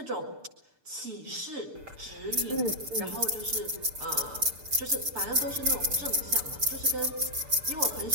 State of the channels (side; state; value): left; late; 6.7 ms